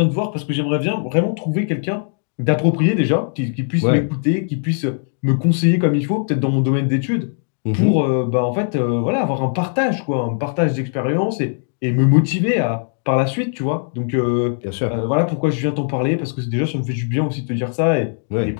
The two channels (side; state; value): right; silent; digital silence